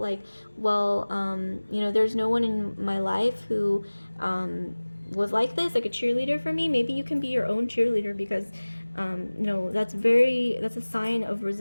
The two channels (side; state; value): both; inverted; correlation -1.00